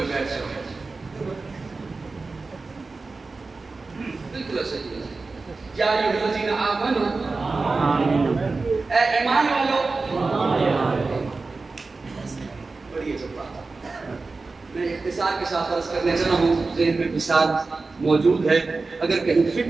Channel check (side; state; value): left; quieter; 3.8 dB